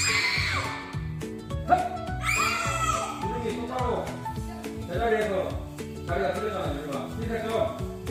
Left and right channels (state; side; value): identical; both; correlation 1.00